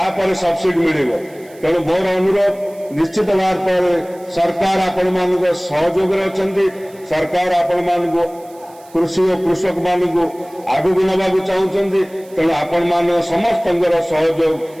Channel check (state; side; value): noise; right; hiss, 26 dB below the sound